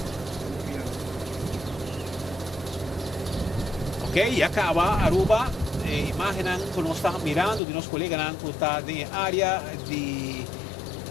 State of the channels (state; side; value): drops out; right; at 7.6 s